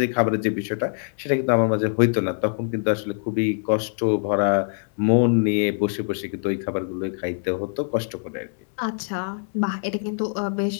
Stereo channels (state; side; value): silent; right; 63 dB below the other